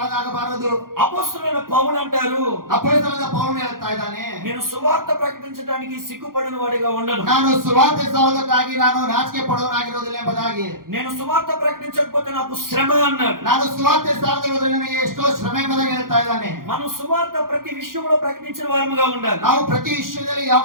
అపొస్తలులైన పౌలు అంటారు, ಅಪೊಸ್ತಲನಾದ ಪೌಲನು ಹೇಳ್ತಾ ಇದ್ದಾನೆ, నేను సువార్త ప్రకటించడానికి సిగ్గుపడిన వాడిగా ఉండను. ನಾನು ಸುವಾರ್ತೆ ಸಾರುವುದಕ್ಕಾಗಿ ನಾನು ನಾಚಿಕೆ ಪಡುವವನಾಗಿರುವುದಿಲ್ಲ ಎಂಬುದಾಗಿ. నేను సువార్త ప్రకటించకపోతే నాకు శ్రమ అన్నాడు. ನಾನು ಸುವಾರ್ತೆ ಸಾರದಿರುವುದರಿಂದ ನನಗೆ ಎಷ್ಟೋ ಶ್ರಮೆ ಎಂಬುದಾಗಿ ಹೇಳ್ತಾ ಇದ್ದಾನೆ. మనం సువార్త ప్రతి విషయంలో ప్రకటించిన వారముగా ఉండాలి. ನಾವು ಪ್ರತಿ ವಿಷಯದಲ್ಲಿ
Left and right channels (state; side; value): late; left; 0.91 ms